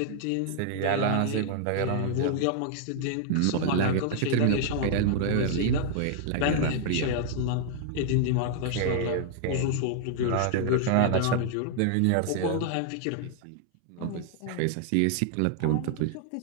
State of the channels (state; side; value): different; both; correlation 0.00